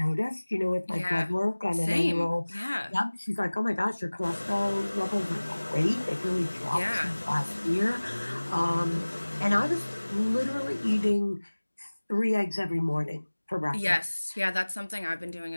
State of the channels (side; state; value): both; inverted; correlation -1.00